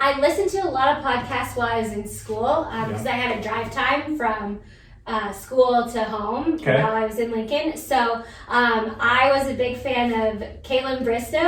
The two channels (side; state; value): both; identical; correlation 1.00